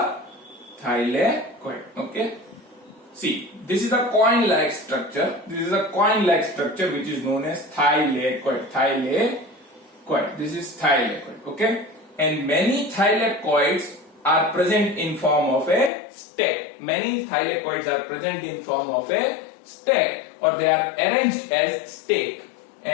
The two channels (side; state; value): right; drops out; at 15.9 s